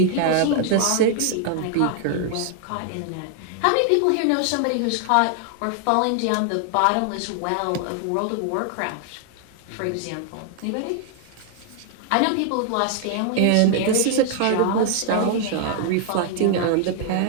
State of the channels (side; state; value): both; different; correlation 0.00